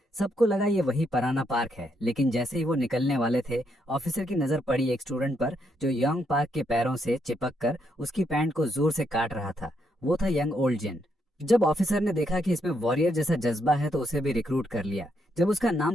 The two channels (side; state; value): both; normal; correlation 0.77